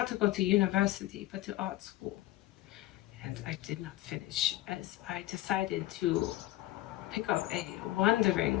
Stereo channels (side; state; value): right; quieter; 16.1 dB